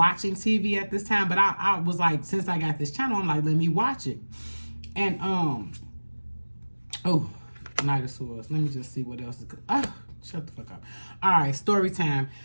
TV at this time, but I was like, since I got this channel, I'm like, let me watch it. And oh, Knight of Swords. Let me just see what else is good. Shut the fuck up. All right, story time.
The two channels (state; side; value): inverted; both; correlation -1.00